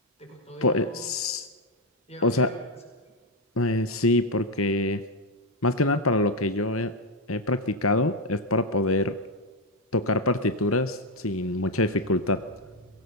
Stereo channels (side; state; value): both; normal; correlation 0.05